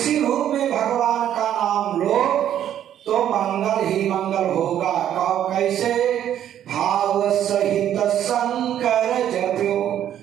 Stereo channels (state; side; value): quieter; left; 10.7 dB